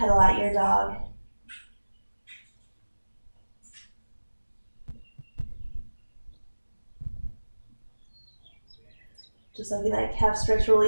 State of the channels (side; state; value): both; inverted; correlation -1.00